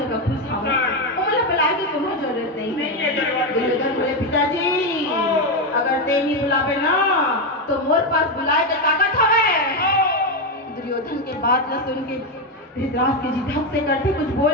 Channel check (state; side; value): normal; both; correlation 0.09